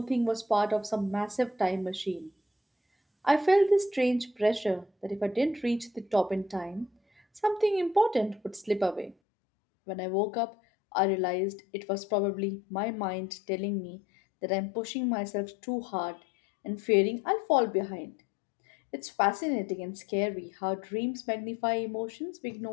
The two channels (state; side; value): drops out; right; at 9.2 s